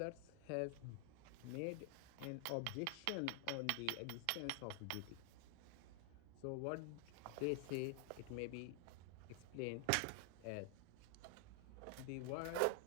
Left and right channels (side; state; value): both; different; correlation 0.00